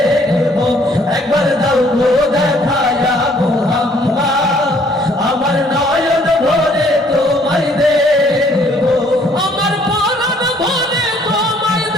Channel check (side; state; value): both; normal; correlation 0.62